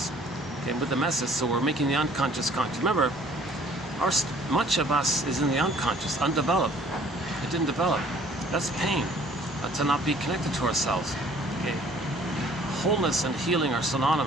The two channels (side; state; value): both; normal; correlation 0.56